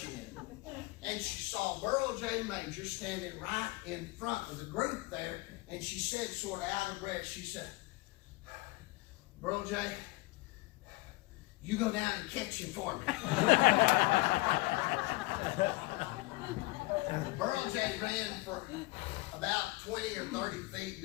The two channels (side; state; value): right; quieter; 22.0 dB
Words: it. And she saw Burl J. Major standing right in front of the group there, and she said, sort of out of breath, she said, "Burl J., you go down and catch him for me." Burl J. ran for about 20 or 30 feet,